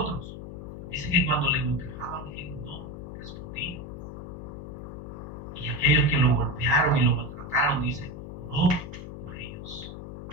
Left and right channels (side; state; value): left; noise; hum, 10 dB below the sound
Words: Dice que cuando le golpeaban, él no respondía. Y aquellos que lo golpearon y lo maltrataron, dice, oró por ellos.